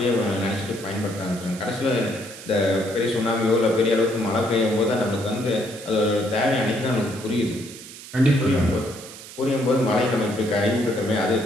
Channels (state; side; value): noise; right; hiss, 15 dB below the sound